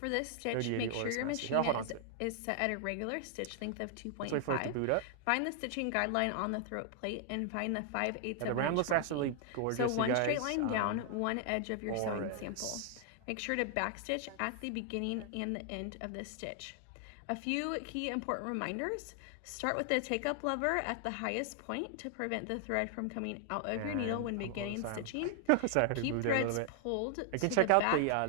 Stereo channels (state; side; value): different; both; correlation 0.00